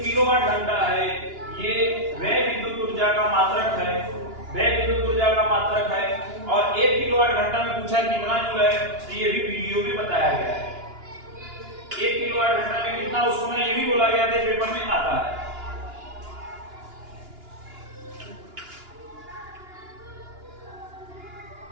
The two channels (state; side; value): late; left; 2.9 ms